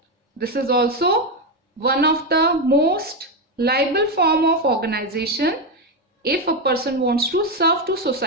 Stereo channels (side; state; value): both; normal; correlation 0.09